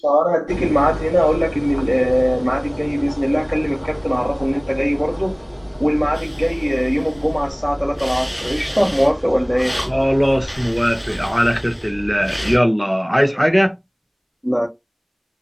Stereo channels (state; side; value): identical; both; correlation 1.00